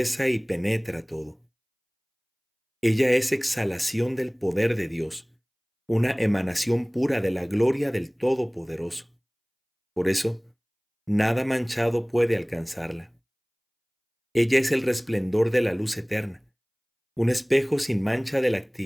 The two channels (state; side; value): identical; both; correlation 1.00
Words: y penetra todo. Ella es exhalación del poder de Dios, una emanación pura de la gloria del Todopoderoso. Por eso, nada manchado puede alcanzarla. Ella es el resplendor de la luz eterna, un espejo sin mancha de la